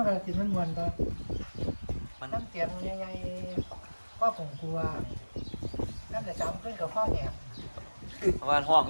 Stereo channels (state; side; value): inverted; both; correlation -1.00